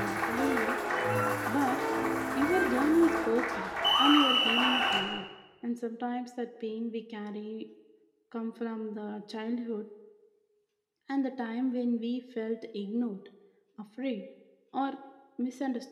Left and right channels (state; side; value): identical; both; correlation 1.00